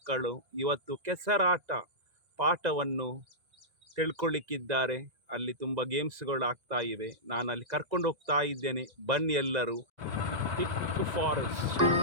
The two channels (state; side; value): late; left; 1.9 ms